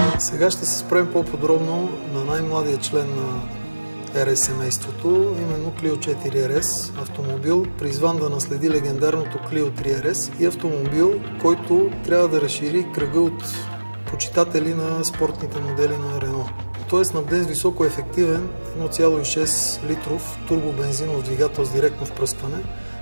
Сега ще се спрем по-подробно на най-младия член на RS семейството, именно Clio 4 RS, автомобил, призван да наследи легендарното Clio 3 RS и автомобил, който трябва да разшири кръга от почитатели на спортните модели на Renault. Той е снабден с високоефективен 1,6 литров турбобензинов двигател с директно впръскване,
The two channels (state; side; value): inverted; both; correlation -1.00